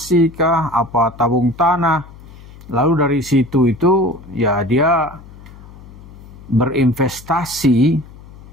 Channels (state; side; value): noise; left; hum, 19 dB below the sound